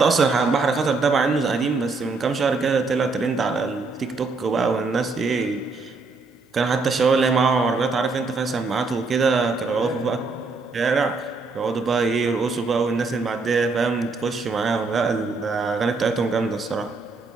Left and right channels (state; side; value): quieter; left; 4.0 dB